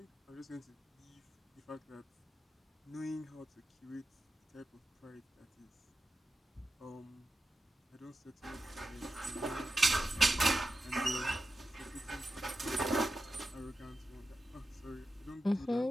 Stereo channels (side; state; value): both; normal; correlation 0.91